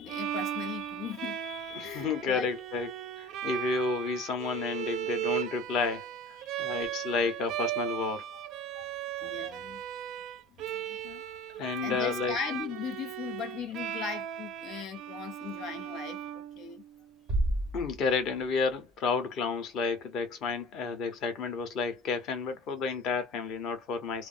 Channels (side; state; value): both; normal; correlation 0.41